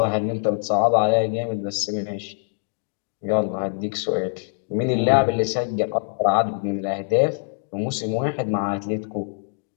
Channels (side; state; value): right; silent; digital silence